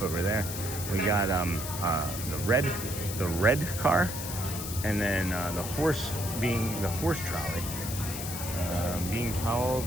over there. We got the red car, and then the horse being the horse trolley. Being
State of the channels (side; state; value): left; noise; hiss, 7 dB below the sound